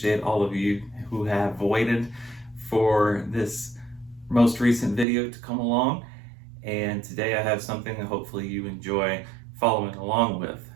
all of you who have waited for this most recent video to come along. And today I have something that hopefully you enjoy following along with.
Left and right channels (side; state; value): left; drops out; at 5.1 s